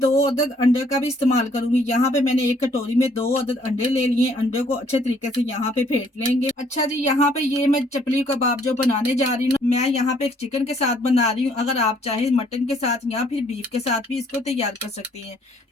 अदद अंडे का भी इस्तेमाल करूंगी। यहाँ पे मैंने एक कटोरी में 2 अदद अंडे ले लिए। अंडे को अच्छे तरीके से यहाँ पे फेंट लेंगे। अच्छा जी, यहाँ पे ये मैं चपली कबाब जो बनाने जा रही हूँ, मैं यहाँ पे एक चिकन के साथ बना रही हूँ। अगर आप चाहे मटन के साथ या फिर बीफ के साथ भी इसको तैयार कर सकती हैं,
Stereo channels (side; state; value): both; normal; correlation 0.64